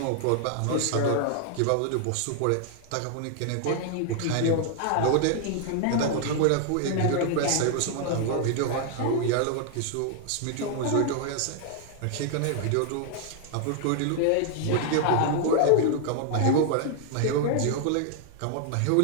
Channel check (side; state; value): both; different; correlation 0.00